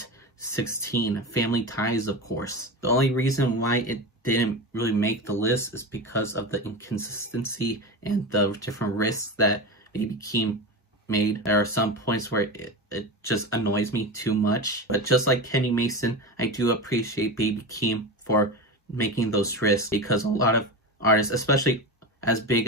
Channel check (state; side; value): normal; both; correlation 0.23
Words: 16, Family Ties, of course. The only reason why it didn't really make the list is because of the inconsistency and the different risks that Baby Keem made. There are some points where it just annoys me too much. But just like Kenny Mason, I do appreciate Baby Keem for making those risks, because a lot of artists, especially as big